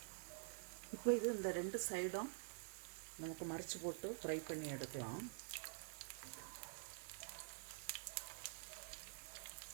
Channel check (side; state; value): left; silent; digital silence